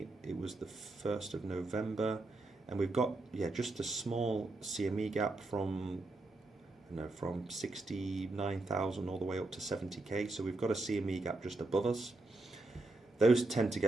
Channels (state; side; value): quieter; left; 3.0 dB